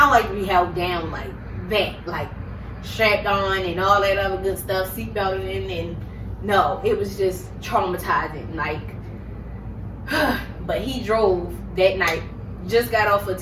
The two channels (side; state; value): both; identical; correlation 1.00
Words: like to be held down like that, like strapped on and all that other good stuff, seatbelted in, and no, it was just traumatizing. Like, but he drove that night, just got off a